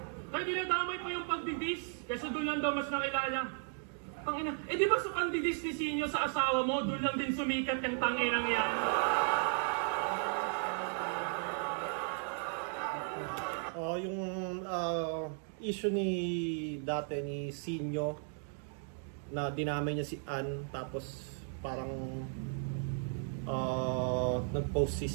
kaya dinadamay pa yung pagdidis, kaysa doon lang daw mas nakilala. Tangina, di ba sa pagdidis ni Sinyo sa asawa mo, doon lang din sumikat yung tanginang yan? Yung issue dati ni Sinyo na dinamay niya si Ann, tapos parang nag-post si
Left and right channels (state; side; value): silent; left; 54 dB below the other